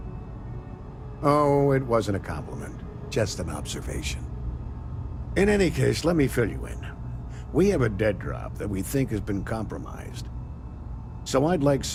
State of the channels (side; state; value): both; identical; correlation 1.00